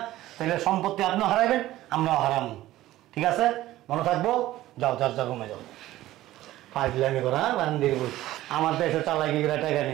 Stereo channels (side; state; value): left; quieter; 15.4 dB